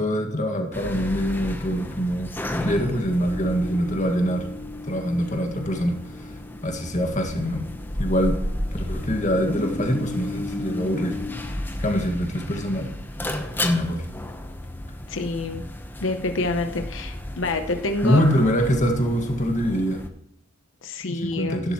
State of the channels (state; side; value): normal; both; correlation 0.69